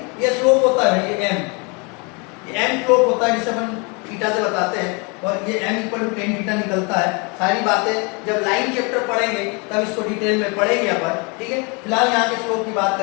ये स्लोप होता है, ये M स्लोप होता है जिसे अपन थीटा से बताते हैं, और ये m equal to tan theta निकलता है। सारी बातें जब लाइन चैप्टर पढ़ेंगे तब इसको डिटेल में पढ़ेंगे अपन, ठीक है। फिलहाल यहाँ के स्लोप की बात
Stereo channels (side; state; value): right; quieter; 31.1 dB